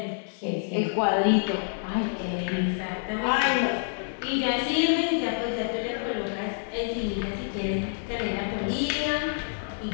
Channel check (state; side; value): silent; right; digital silence